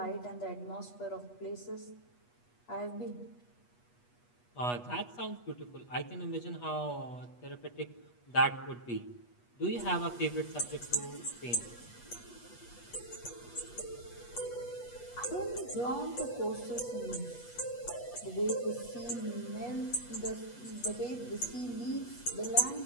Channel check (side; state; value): right; late; 8.3 ms